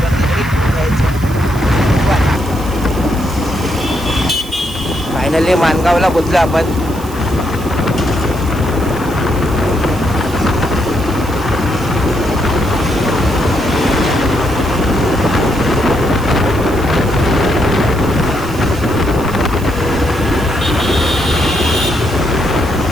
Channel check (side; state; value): right; noise; hiss, 18 dB below the sound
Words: तरी द्यायचं. फायनली माणगावला पोचलो आपण.